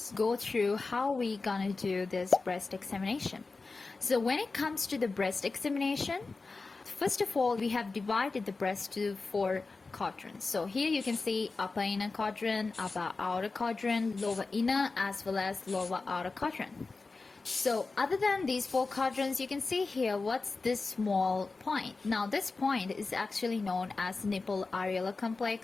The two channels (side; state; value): right; quieter; 3.9 dB